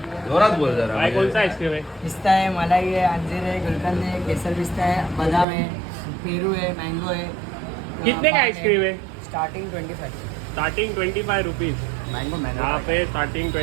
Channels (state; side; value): drops out; left; at 5.5 s